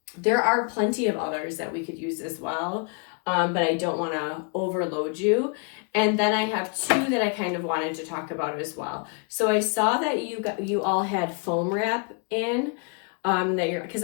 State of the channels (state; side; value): quieter; right; 37.2 dB